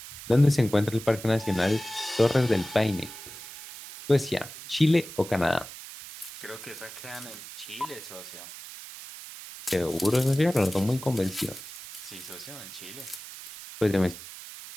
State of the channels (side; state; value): right; noise; hiss, 13 dB below the sound